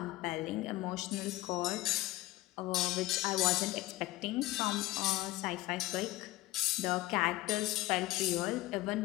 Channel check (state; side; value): quieter; right; 17.9 dB